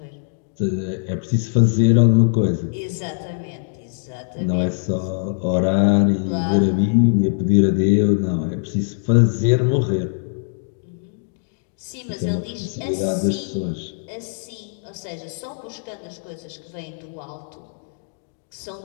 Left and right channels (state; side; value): silent; right; digital silence